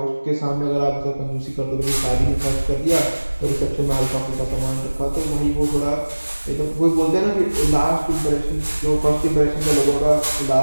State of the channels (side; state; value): both; inverted; correlation -1.00